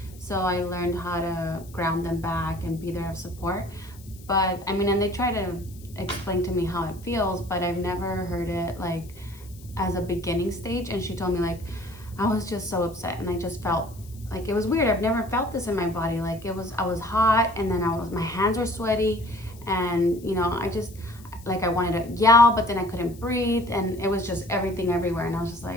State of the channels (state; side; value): noise; left; hiss, 23 dB below the sound